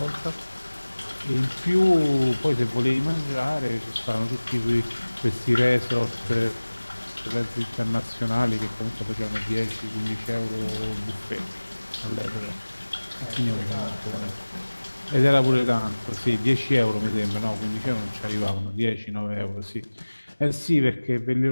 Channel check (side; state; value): both; inverted; correlation -1.00